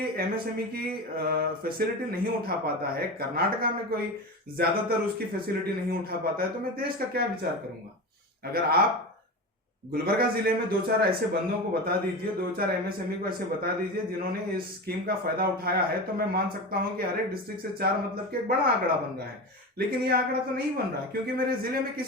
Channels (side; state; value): both; normal; correlation 0.25